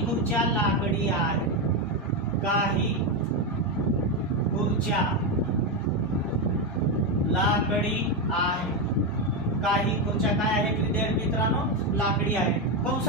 खुर्च्या लाकडी आहेत, काही खुर्च्या लाकडी आहे। काही खुर्च्या काय आहेत विद्यार्थी मित्रांनो, लाकडी आहेत।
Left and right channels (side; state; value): both; normal; correlation 0.09